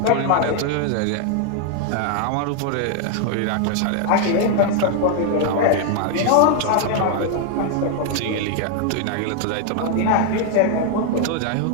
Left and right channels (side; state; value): both; different; correlation 0.00